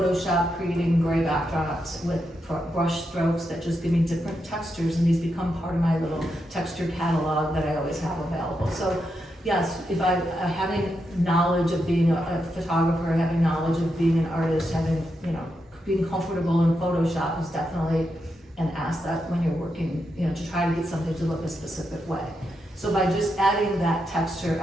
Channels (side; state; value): both; normal; correlation 0.84